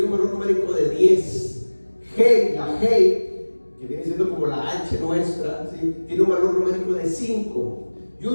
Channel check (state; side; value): inverted; both; correlation -1.00